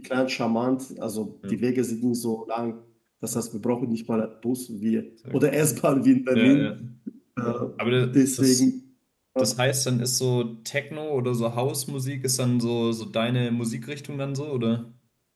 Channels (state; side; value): identical; both; correlation 1.00